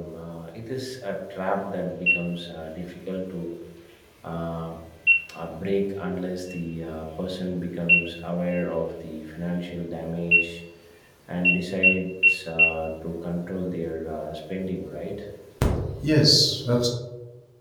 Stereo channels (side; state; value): both; identical; correlation 1.00